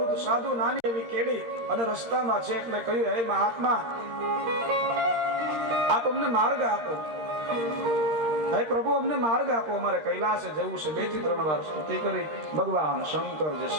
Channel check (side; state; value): left; late; 13 ms